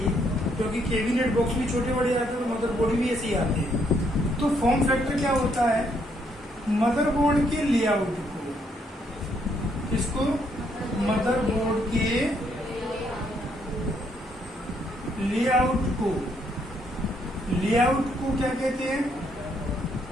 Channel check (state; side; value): normal; both; correlation 0.72